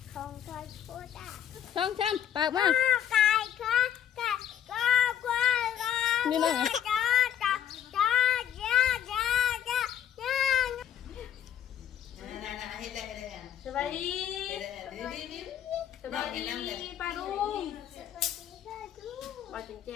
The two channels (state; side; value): quieter; right; 10.0 dB